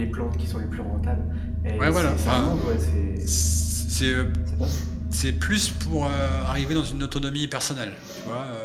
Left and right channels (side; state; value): both; identical; correlation 1.00